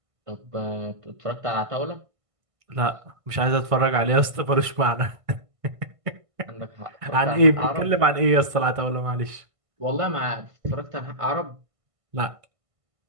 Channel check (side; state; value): left; late; 1.5 ms